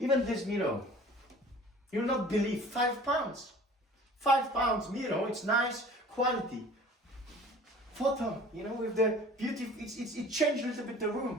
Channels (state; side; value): normal; both; correlation 0.47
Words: this mirror, you'll not believe, £5. £5 mirror, it's nice quality. Photo, you know, with the beauty, it changed a little bit the